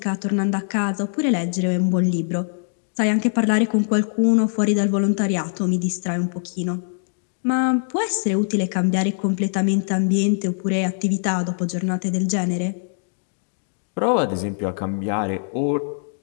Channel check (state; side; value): silent; right; digital silence